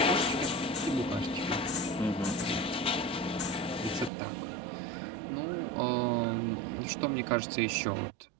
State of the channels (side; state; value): left; drops out; at 4.1 s